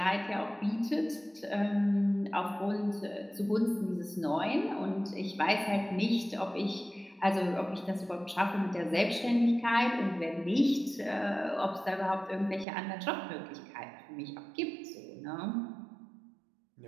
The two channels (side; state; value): left; drops out; at 12.7 s